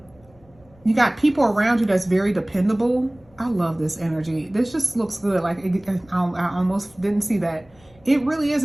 You got people around you that's very dependable. I love this energy. This just looks good. Like, I almost didn't see that. It really is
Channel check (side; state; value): left; noise; rumble, 29 dB below the sound